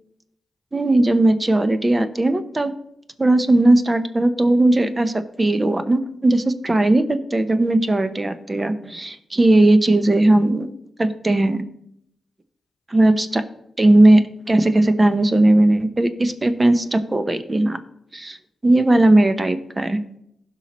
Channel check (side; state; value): both; normal; correlation 0.97